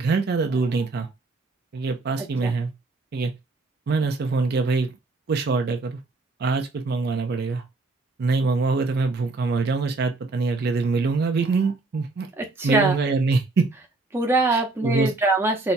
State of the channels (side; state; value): left; quieter; 3.4 dB